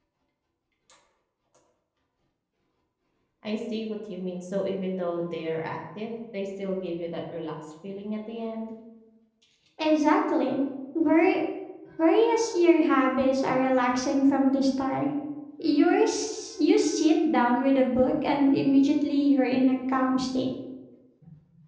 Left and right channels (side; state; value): both; identical; correlation 1.00